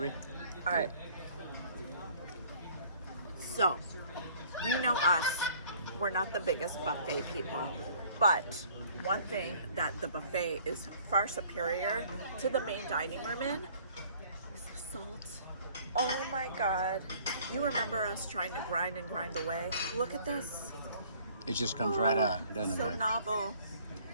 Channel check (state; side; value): inverted; both; correlation -0.55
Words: All right. So, you know us. We're not the biggest buffet people, but one thing that the buffet is far superior to the main dining room in is the salt. Oh my God. You remember us trying to grind and grind away? Look at this. It just comes right out, doesn't So it? novel.